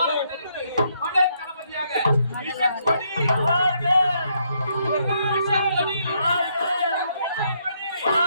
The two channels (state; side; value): inverted; both; correlation -0.74